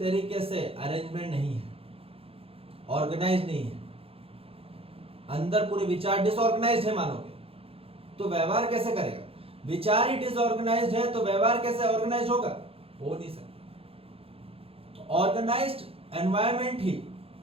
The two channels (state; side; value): late; left; 0.28 ms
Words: से अरेंजमेंट नहीं है, ऑर्गेनाइज नहीं है, अंदर पूरे विचार डिसऑर्गेनाइज्ड है मानव के। तो व्यवहार कैसे करेगा? विचार ही डिसऑर्गेनाइज्ड है तो व्यवहार कैसे ऑर्गेनाइज होगा? हो नहीं सकता। ऑर्गेनाइज्ड एनवायरनमेंट ही